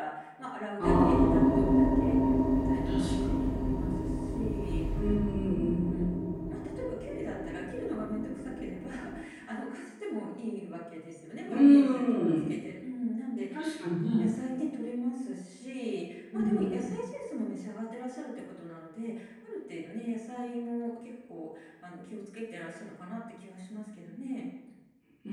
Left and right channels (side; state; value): both; identical; correlation 1.00